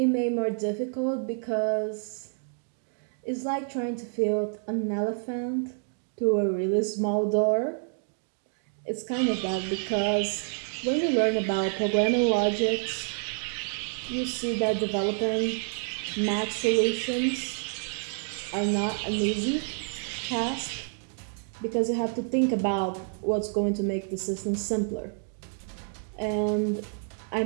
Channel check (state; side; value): silent; left; 59 dB below the other